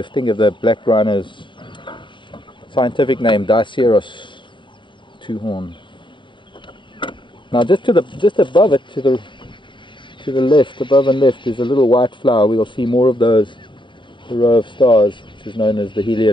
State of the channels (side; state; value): right; late; 0.23 ms